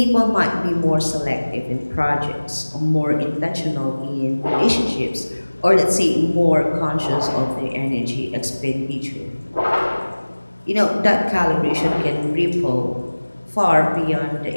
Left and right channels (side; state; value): both; inverted; correlation -1.00